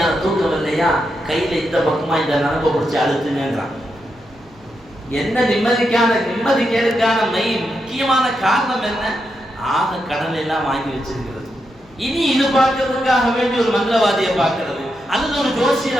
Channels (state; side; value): noise; left; hum, 28 dB below the sound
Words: தூக்கம் இல்லையா, கையில இந்த பக்கமா இந்த நரம்பை பிடிச்சி அழுத்துங்கிறான். என்ன நிம்மதி கேடுக்கான முக்கியமான காரணம் என்ன? ஆக கடனை எல்லாம் வாங்கி வச்சிருக்கிறது. இனி இது பார்க்கறதுக்காக வேண்டி ஒரு மந்திரவாதியை பார்க்கறது, அல்லது ஒரு